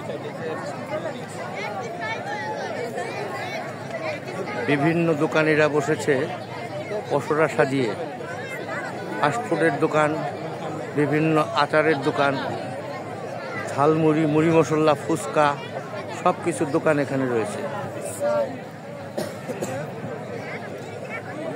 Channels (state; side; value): identical; both; correlation 1.00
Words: বিভিন্ন দোকানিরা বসেছে পসরা সাজিয়ে। ফাস্টফুডের দোকান, বিভিন্ন আচারের দোকান, ঝালমুড়ি, মুড়ি মশলা, ফুচকা সব কিছুর দোকান এখানে রয়েছে।